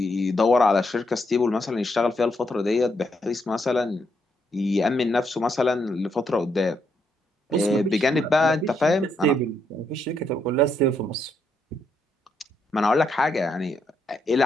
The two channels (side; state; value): both; normal; correlation 0.77